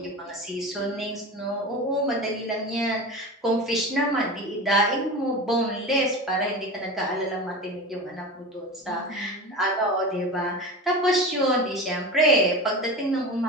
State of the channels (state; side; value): normal; both; correlation 0.29